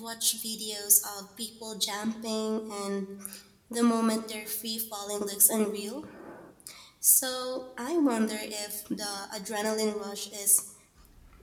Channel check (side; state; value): both; identical; correlation 1.00